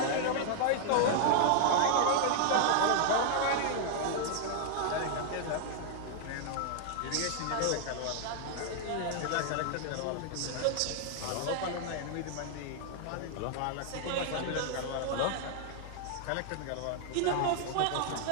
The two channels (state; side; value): different; both; correlation 0.00